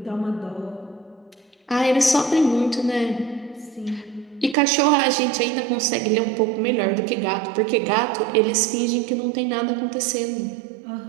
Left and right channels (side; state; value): left; drops out; at 4.5 s